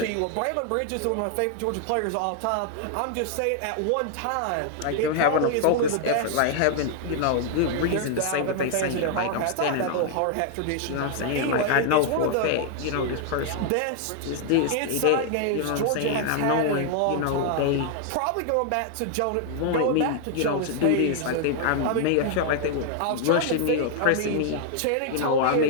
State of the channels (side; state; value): both; different; correlation 0.00